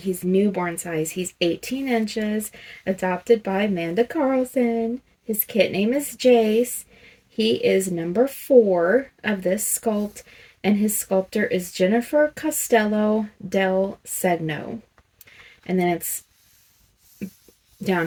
newborn size. He's 18 inches, adopted by Amanda Carlson. His kit name is Jace. He is number 4 of this sculpt, and his sculptor is Jennifer Costello del Segno. And then it's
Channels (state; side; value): identical; both; correlation 1.00